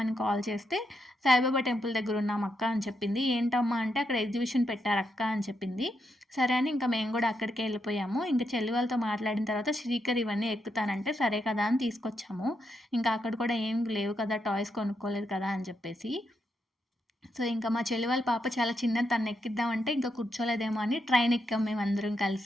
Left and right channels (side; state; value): both; normal; correlation 0.82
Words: కాల్ చేస్తే, సాయిబాబా టెంపుల్ దగ్గరున్నాం అక్క అని చెప్పింది. ఏంటమ్మా అంటే అక్కడ ఎగ్జిబిషన్ పెట్టారక్క అని చెప్పింది. సరే అని ఇంక మేము గూడా అక్కడికే ఎళ్ళిపోయాము. ఇంక చెల్లి వాళ్ళతో మాట్లాడిన తర్వాత శ్రీకర్ ఇవన్నీ ఎక్కుతానంటే, సరే కదా అని తీసుకొచ్చాము. ఇంకా అక్కడ కూడా ఏం లేవు కదా! టాయ్స్ కొనుక్కోలేదు కదా! అని చెప్పేసి. సో, ఇంకా మా చెల్లి వాళ్ళ పాప చాలా చిన్నది తన్నెక్కిద్దామంటే ఇంకా కూర్చోలేదేమో అని ట్రైన్ ఎక్కాం మేమందరం